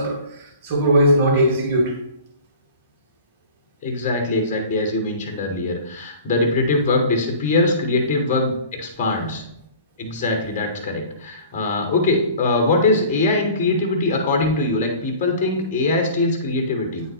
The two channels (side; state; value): both; inverted; correlation -0.43